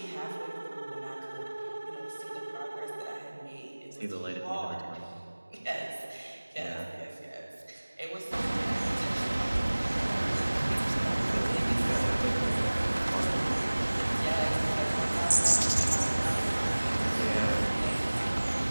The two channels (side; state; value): both; inverted; correlation -1.00